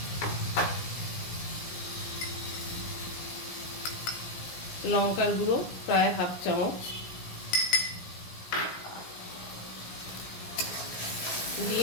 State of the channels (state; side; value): late; right; 17 ms